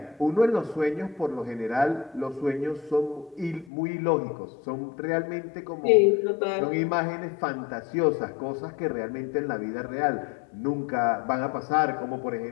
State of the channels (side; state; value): right; drops out; at 3.7 s